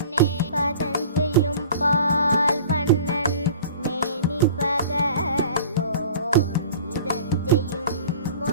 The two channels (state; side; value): inverted; both; correlation -0.44